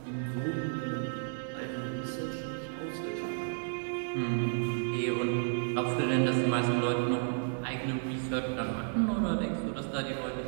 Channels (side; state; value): left; silent; 56 dB below the other